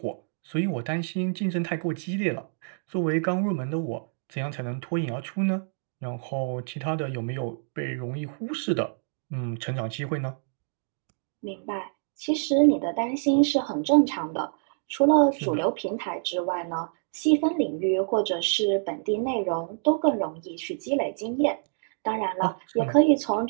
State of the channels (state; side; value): silent; left; digital silence